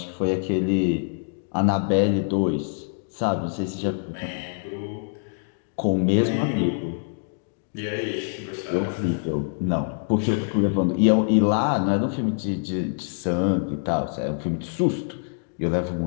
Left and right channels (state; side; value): silent; right; digital silence